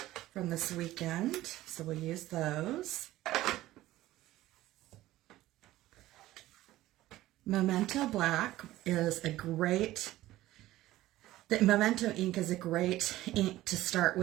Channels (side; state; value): left; quieter; 15.9 dB